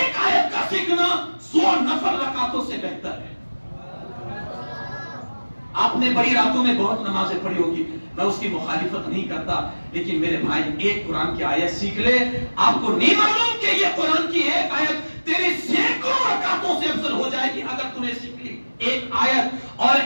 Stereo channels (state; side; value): inverted; both; correlation -1.00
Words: آیت کا سیکھنا 100 نفل رکعتوں سے بہتر ہے۔ آپ نے بڑی راتوں میں بہت نمازیں پڑھی ہوگی، میں اس کی مخالفت نہیں کرتا، لیکن میرے بھائی ایک قرآن کی آیت سیکھ لے، آپ کو نہیں معلوم کہ یہ قرآن کی ایک آیت تیری سینکڑوں رکعتوں سے افضل ہو جائے گی اگر تم نے سیکھ لی ایک آیت اور